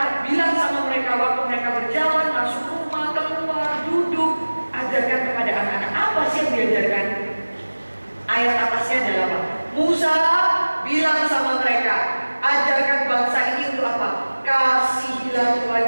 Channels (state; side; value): inverted; both; correlation -1.00